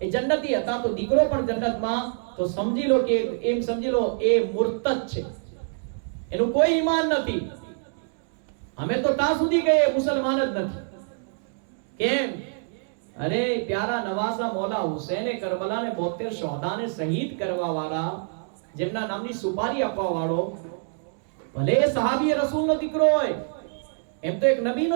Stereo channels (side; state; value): left; silent; digital silence